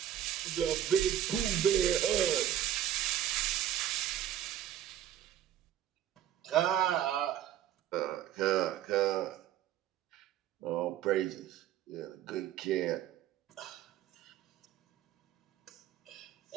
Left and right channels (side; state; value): left; quieter; 11.2 dB